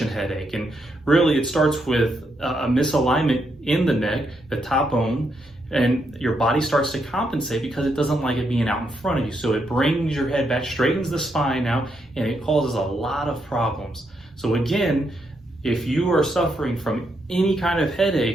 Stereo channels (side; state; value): both; normal; correlation 0.79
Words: headache. And really it starts with a misalignment in the neck, the top bone, and your body starts to compensate because it doesn't like it being out in front of you. So it brings your head back, straightens the spine out, and it causes a lot of problems. So again, if you are suffering from any kind of